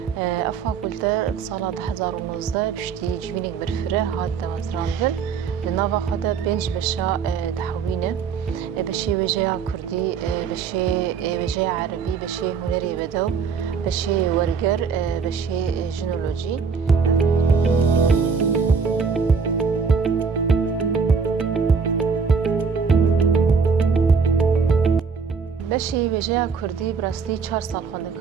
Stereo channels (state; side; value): quieter; left; 5.7 dB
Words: فاکولته سال 2019 پشتی جوینک برفره هات دمزراندن لناوا خدا بنج بشا دحوینه بشي وجه كردي بشي وجه عربي بشي هنري بدو بشي ورقر بشي جنولوجي بشي وجه كردي براستي 4 سال خوانده